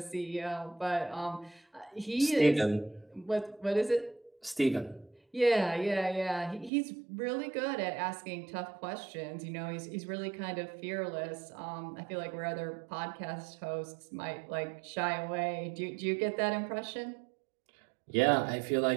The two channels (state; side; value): drops out; left; at 6.7 s